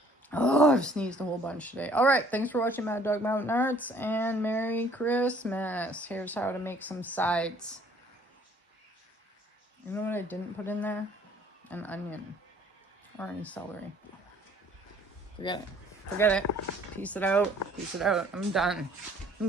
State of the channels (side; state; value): both; normal; correlation 0.57